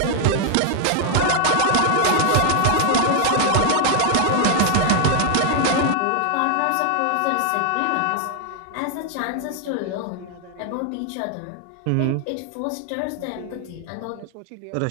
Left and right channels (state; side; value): different; both; correlation 0.00